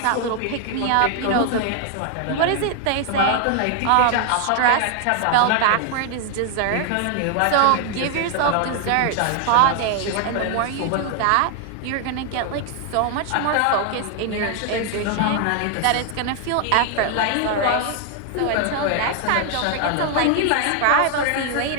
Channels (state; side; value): different; both; correlation 0.00